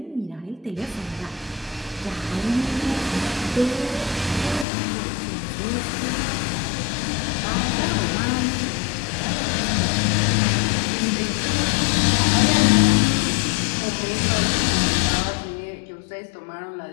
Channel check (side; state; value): right; drops out; at 4.7 s